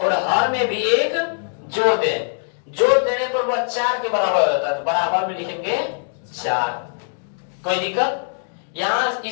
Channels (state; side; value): silent; right; digital silence